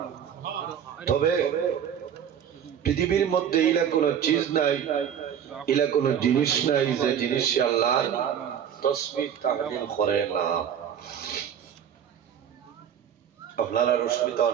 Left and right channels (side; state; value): left; quieter; 8.8 dB